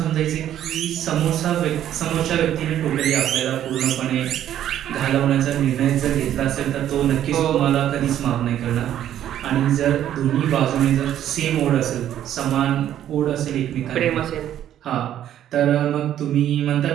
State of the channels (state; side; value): quieter; left; 11.2 dB